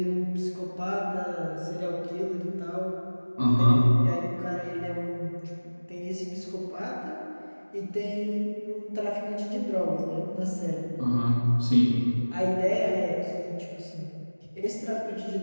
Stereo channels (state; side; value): inverted; both; correlation -1.00